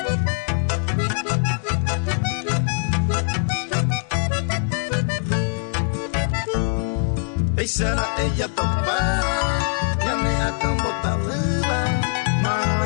Será ella topada, ya me acabo tabuda, mano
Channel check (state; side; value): silent; right; digital silence